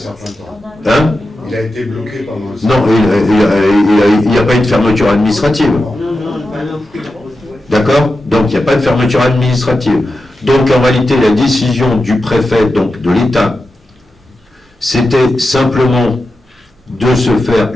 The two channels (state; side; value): normal; both; correlation 0.90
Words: temps. Hein? Il a été bloqué pendant un certain temps. Non, il n'y a pas eu de fermeture administrative. D'accord? Donc, il n'y a pas de fermeture administrative. Donc, en réalité, la décision du préfet, donc de l'État, c'était simplement de se faire